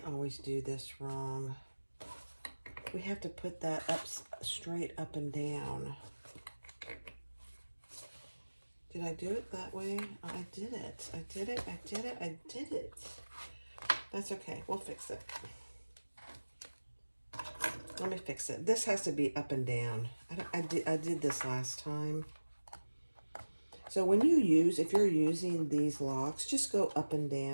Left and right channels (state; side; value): inverted; both; correlation -1.00